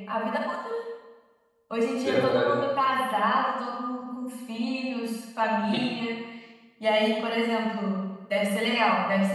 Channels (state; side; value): identical; both; correlation 1.00